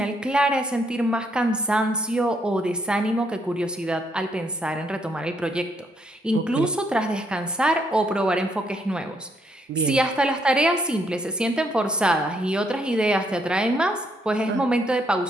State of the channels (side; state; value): both; normal; correlation 0.72